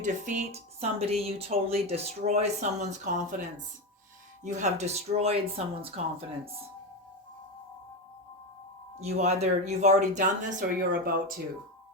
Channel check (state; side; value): normal; both; correlation 0.15